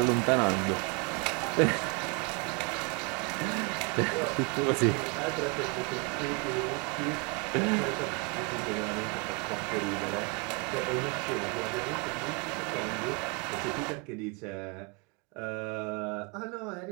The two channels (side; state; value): left; quieter; 31.2 dB